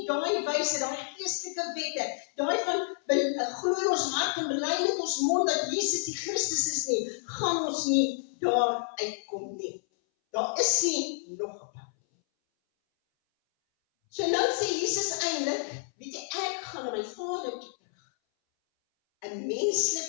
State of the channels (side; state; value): right; silent; 58 dB below the other